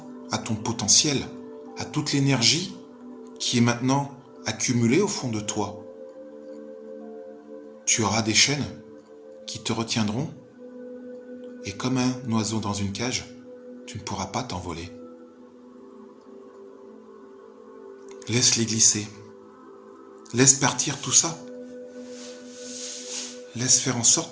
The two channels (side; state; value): both; identical; correlation 1.00